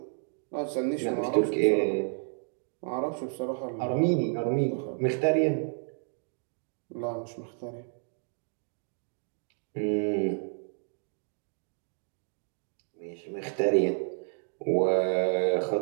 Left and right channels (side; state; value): left; silent; 57 dB below the other